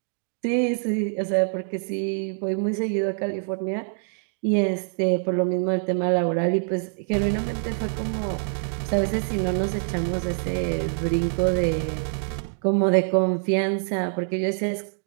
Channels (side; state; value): left; silent; 62 dB below the other